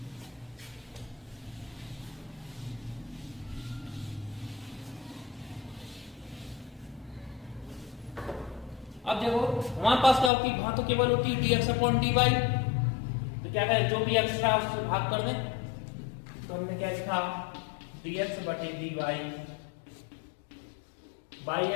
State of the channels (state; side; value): drops out; right; at 10.3 s